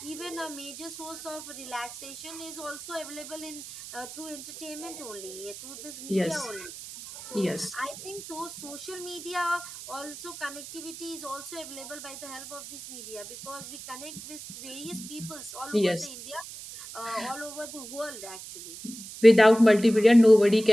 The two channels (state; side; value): noise; right; hiss, 12 dB below the sound